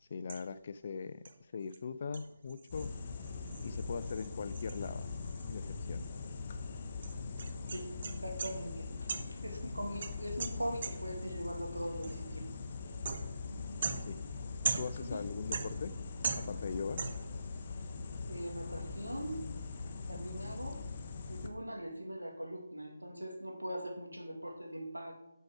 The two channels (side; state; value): both; inverted; correlation -0.83